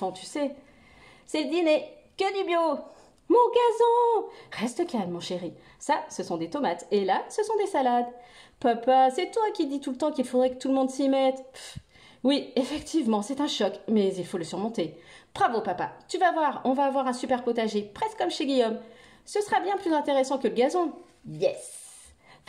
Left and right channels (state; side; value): identical; both; correlation 1.00